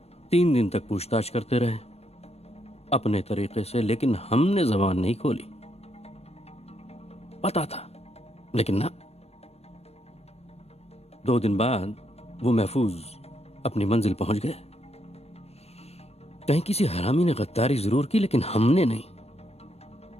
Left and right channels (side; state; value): right; late; 0.30 ms